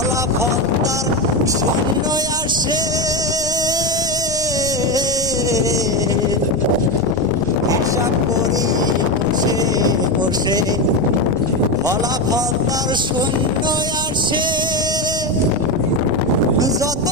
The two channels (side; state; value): left; noise; rumble, 14 dB below the sound